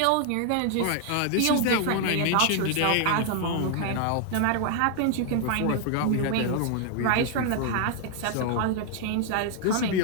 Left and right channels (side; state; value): both; different; correlation 0.00